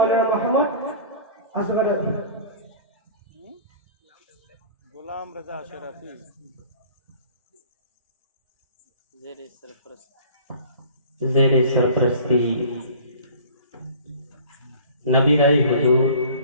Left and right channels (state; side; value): inverted; both; correlation -0.45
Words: मोहम्मद असगर गुलाम रजा शरफी ज़ेरे सरपरस्ती नबी राय हुजूर